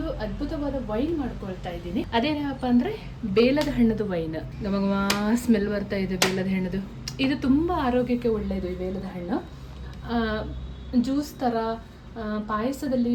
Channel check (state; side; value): identical; both; correlation 1.00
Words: ಅದ್ಭುತವಾದ ವೈನ್ ಮಾಡ್ಕೊಳ್ತಾ ಇದ್ದೀನಿ. ಅದೇನಪ್ಪ ಅಂದರೆ ಬೇಲದ ಹಣ್ಣದು ವೈನ್. ನಮಗೆ ಸ್ಮೆಲ್ ಬರ್ತಾ ಇದೆ ಬೇಲದ ಹಣ್ಣದು. ಇದು ತುಂಬ ಆರೋಗ್ಯಕ್ಕೆ ಒಳ್ಳೆಯದು. ಈ ಬೇಲದ ಹಣ್ಣು ಜ್ಯೂಸ್ ಥರ ಪಾಯಸದಲ್ಲಿ